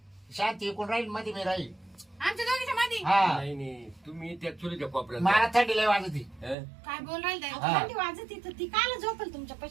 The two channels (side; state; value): left; drops out; at 6.6 s